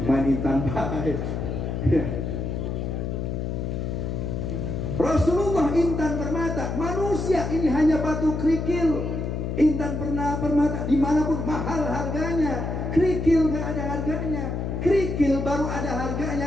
Main intan baik. Rasulullah intan permata, manusia ini hanya batu kerikil. Intan permata dimanapun mahal harganya, kerikil gak ada harganya. Kerikil baru ada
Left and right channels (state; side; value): noise; left; hum, 3 dB below the sound